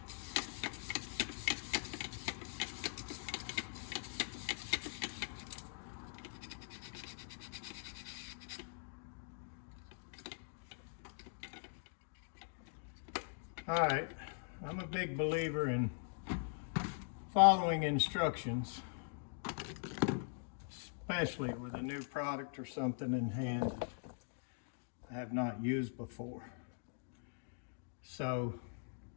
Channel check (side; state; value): right; silent; digital silence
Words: All right, I'm a big believer in following instructions, especially with a new product or something in hand I have not used before. So